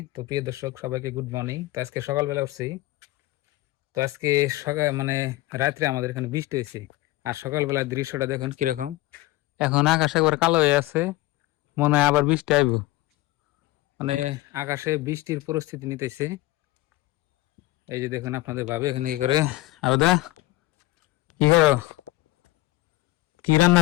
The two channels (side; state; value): right; quieter; 18.5 dB